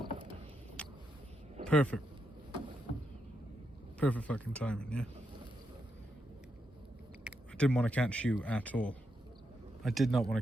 Perfect. Perfect fucking timing, yeah. I didn't want to catch you at all. I did not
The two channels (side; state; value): both; normal; correlation 0.83